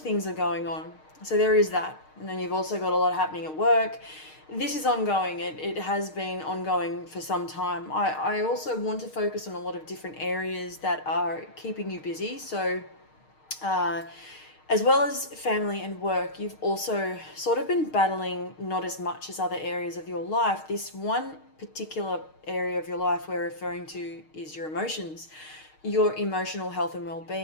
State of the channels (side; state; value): right; late; 6.5 ms